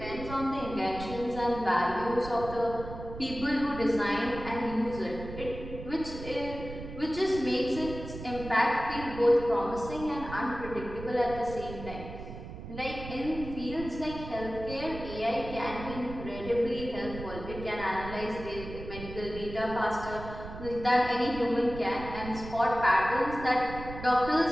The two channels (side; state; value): right; noise; rumble, 11 dB below the sound